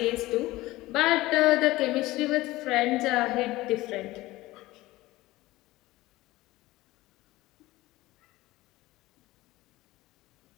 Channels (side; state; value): right; quieter; 18.4 dB